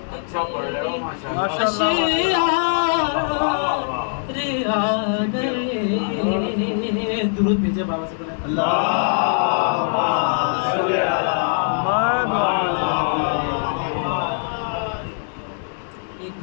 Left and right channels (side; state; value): right; silent; 62 dB below the other